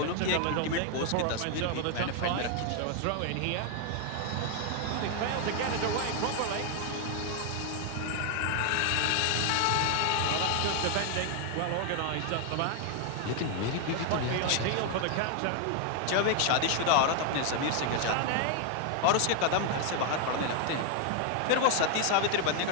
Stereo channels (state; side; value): different; both; correlation 0.00